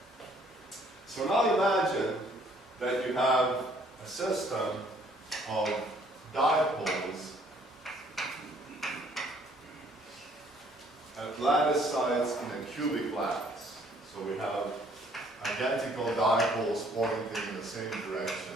So now imagine that you have a system of dipoles at lattice sites in a cubic lattice. So we have identical dipoles pointing in the same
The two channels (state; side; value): normal; both; correlation 0.62